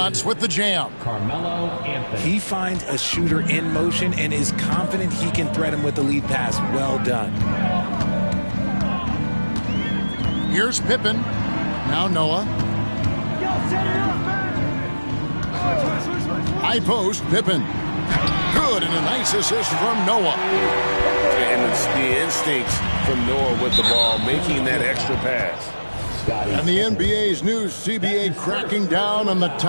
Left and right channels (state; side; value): inverted; both; correlation -1.00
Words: with the jam. Carmelo Anthony. He finds a shooter in motion and is confident he can thread him with the lead pass. Well done. Here's Pippen. Now Noah. High post, Pippen. Good, and a nice assist from Noah. And the instincts from Noah with the ball, making that extra pass. And the NBA's new CBA cracking down on the